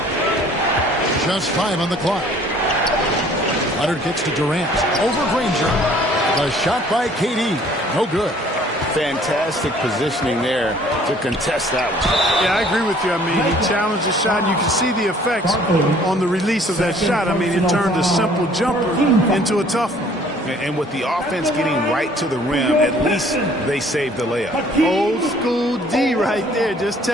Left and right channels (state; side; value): normal; both; correlation 0.56